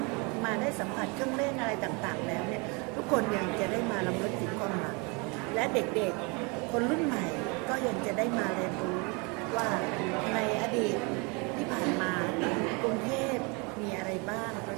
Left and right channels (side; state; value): left; quieter; 30.4 dB